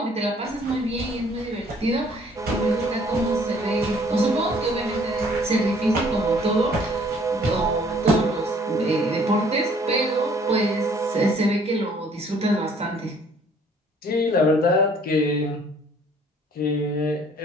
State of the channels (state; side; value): normal; both; correlation 0.58